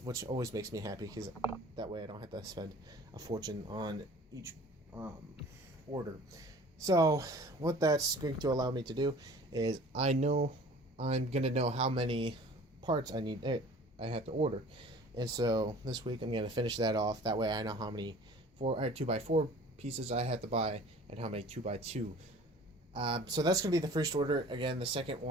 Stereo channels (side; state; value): both; normal; correlation 0.47